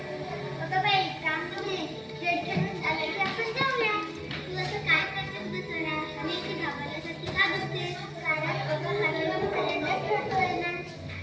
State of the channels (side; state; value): both; identical; correlation 1.00